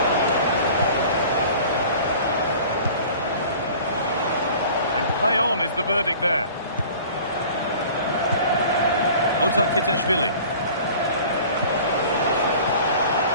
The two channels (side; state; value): both; inverted; correlation -0.45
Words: And play on is the verdict there. Kitashvili.